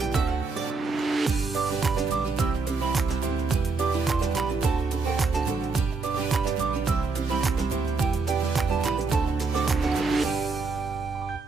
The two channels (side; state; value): left; quieter; 4.2 dB